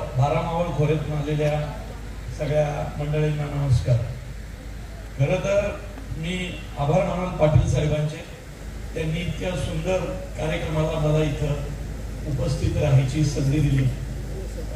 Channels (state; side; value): identical; both; correlation 1.00